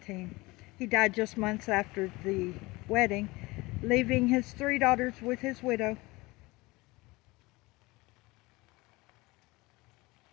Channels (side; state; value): right; quieter; 22.4 dB